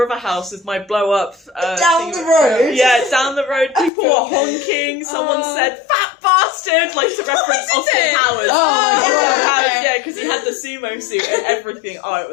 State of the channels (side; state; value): right; drops out; at 3.9 s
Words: House with my blow up down the road. Yeah, down the road. People were honking. Someone said "fat bastard," like to reference Austin Powers. Oh my god! Yeah, because he had the sumo suit and everything. Oh, it